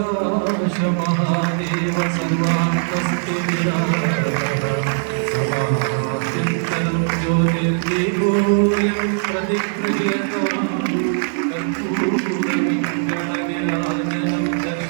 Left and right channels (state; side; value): silent; left; digital silence